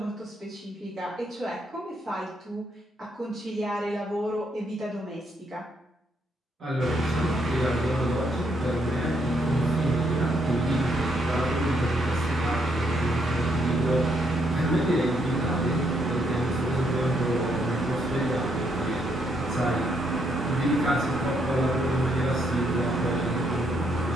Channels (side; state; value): both; normal; correlation 0.74